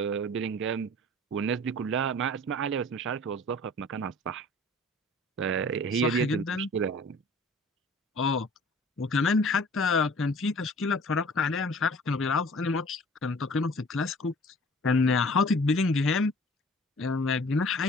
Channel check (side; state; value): both; normal; correlation 0.48